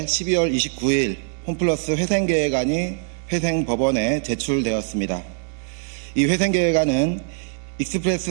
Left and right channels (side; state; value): left; silent; digital silence